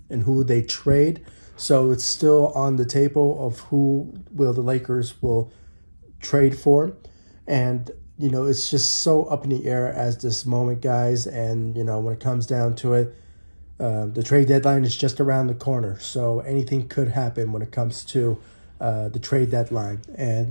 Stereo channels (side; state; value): both; inverted; correlation -1.00